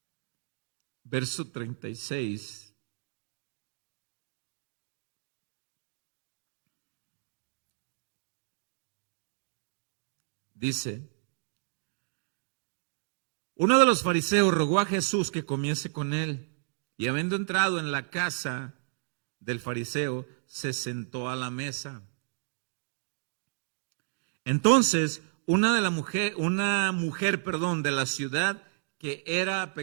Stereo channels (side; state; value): left; silent; digital silence